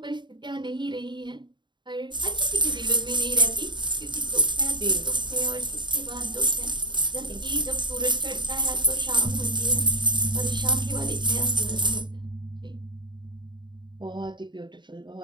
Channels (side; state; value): left; late; 0.22 ms